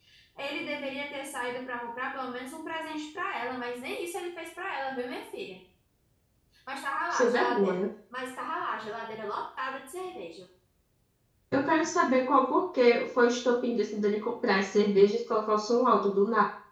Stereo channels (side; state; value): both; identical; correlation 1.00